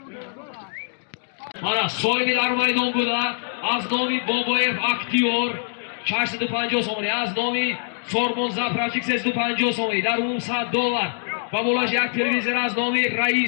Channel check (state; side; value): silent; right; digital silence